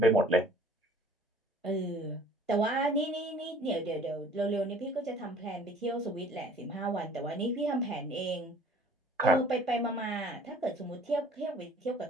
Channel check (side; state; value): both; normal; correlation 0.52